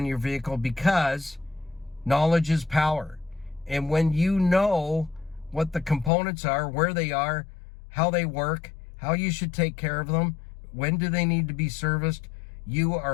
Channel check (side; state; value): right; drops out; at 6.1 s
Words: your vehicle because knowledge is power. And when you know what the components are, where they are, how they work, how you should take care of them, when do they need to be serviced, you